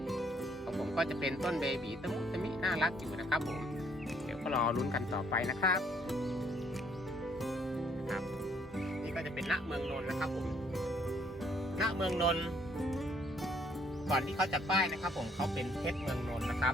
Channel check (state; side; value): normal; both; correlation 0.66